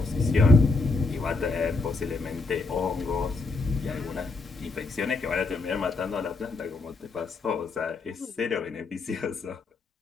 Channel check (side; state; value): right; quieter; 3.8 dB